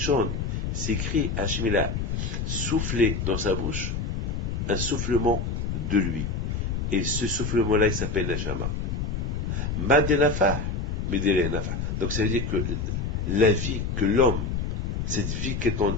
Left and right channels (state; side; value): noise; left; rumble, 2 dB below the sound